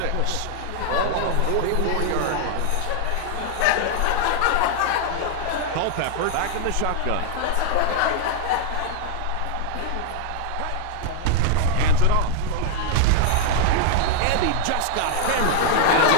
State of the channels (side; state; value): both; different; correlation 0.00